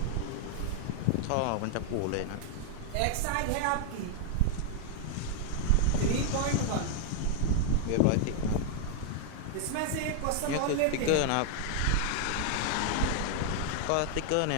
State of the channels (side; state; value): both; different; correlation 0.00